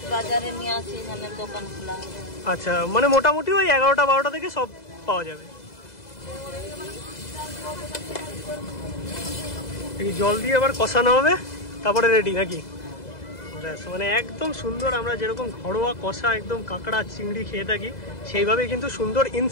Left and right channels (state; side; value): late; right; 2.0 ms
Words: আচ্ছা, মানে মোটামুটি ওই 11টা 12টা থেকে সব পাওয়া যাবে। জল দিয়ে আবার কষানো হবে, তারপরে রেডি নাকি? মানে একদম সুন্দর, আমরা যেরকম ঘরোয়া কষা একদম কাঁকড়া চিংড়ি খেয়ে থাকি সেইভাবে কিন্তু সুন্দর